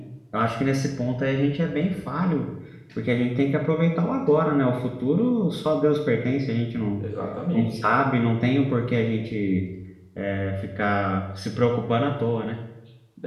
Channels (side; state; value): both; identical; correlation 1.00